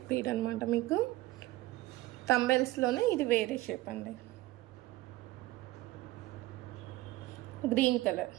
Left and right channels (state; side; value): quieter; left; 17.8 dB